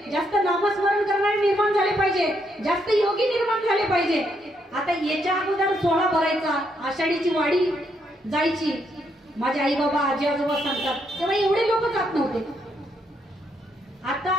जास्त नामस्मरण करणारे निर्माण झाले पाहिजे, जास्त योगी निर्माण झाले पाहिजे. आता याच्या अगोदर सोहळा भरायचा, आषाढीची वाडी जायची, माझे आई बाबा आजी आजोबा सांगतात, तेव्हा एवढे लोक जात नव्हते. आता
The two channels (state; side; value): normal; both; correlation 0.76